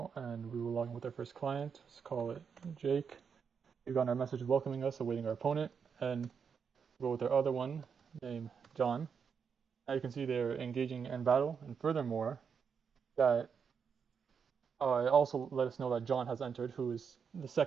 and we will log in with our first client. Let's call it Jake. We've got our message welcoming us, awaiting our opponent, and we'll go with our other one named John. Now you can see they're engaging in battle, and furthermore, that it also let us know that John has entered, who is the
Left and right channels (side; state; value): left; quieter; 6.5 dB